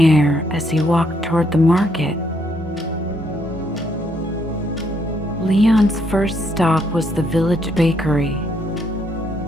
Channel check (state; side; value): normal; both; correlation 0.72